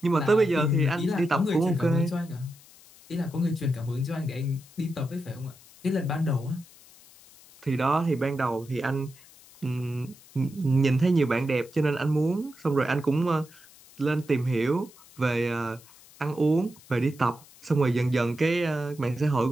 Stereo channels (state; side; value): noise; left; hiss, 24 dB below the sound